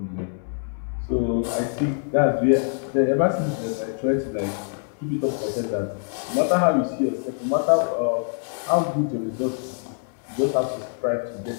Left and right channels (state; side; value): silent; right; 62 dB below the other